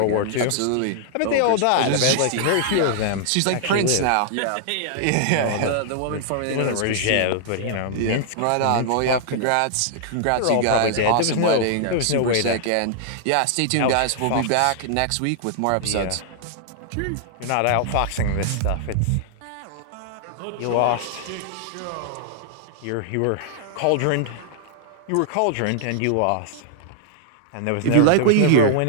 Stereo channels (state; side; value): different; both; correlation -0.01